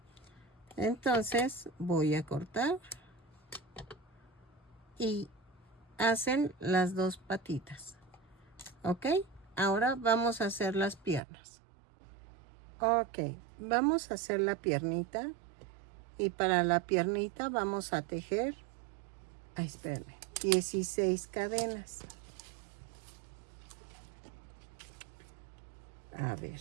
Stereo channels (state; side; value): drops out; left; at 11.2 s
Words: Entonces voy a cortar. Y hacen las dos patitas. ¿Ok? Ahora vamos a hacer las piernas. Ok, vamos a hacer la piernita. Y para la piernita vamos a tejer, espérenme, 16 cadenas. A ver.